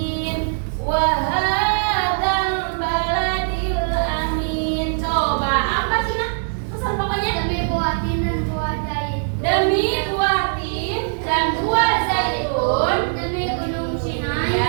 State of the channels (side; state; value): left; silent; 62 dB below the other